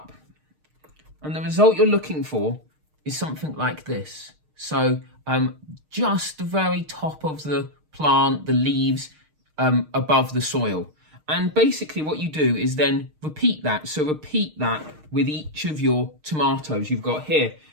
And the result you're looking for is something like this. So just the very top of the plant, the leaves above the soil. And basically what you do is then repeat that. So repeat that with each of your tomatoes you've got here.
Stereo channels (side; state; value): left; late; 6.5 ms